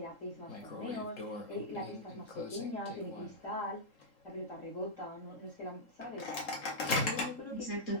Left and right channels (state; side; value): late; right; 3.7 ms